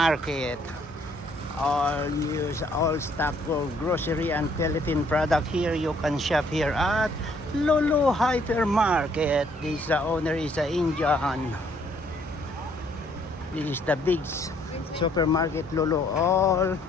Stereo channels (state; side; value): normal; both; correlation 0.65